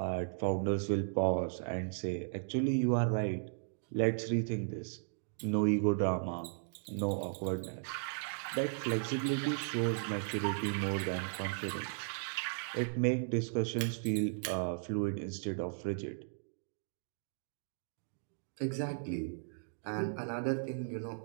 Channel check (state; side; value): silent; left; digital silence